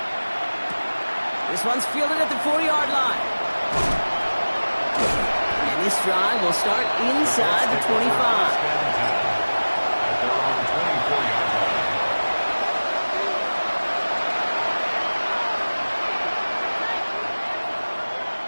This one's fielded at the 40-yard line. And this drive will start inside the 25. At their own 24-yard line.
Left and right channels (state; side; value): inverted; both; correlation -1.00